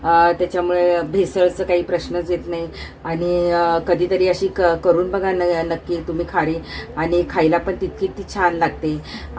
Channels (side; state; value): both; identical; correlation 1.00